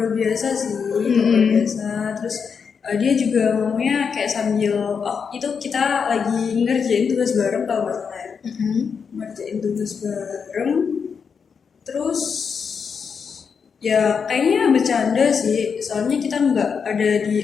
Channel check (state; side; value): quieter; right; 6.2 dB